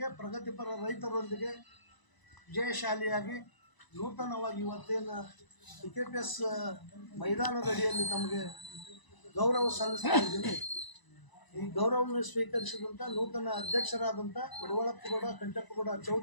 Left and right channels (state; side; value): late; right; 1.0 ms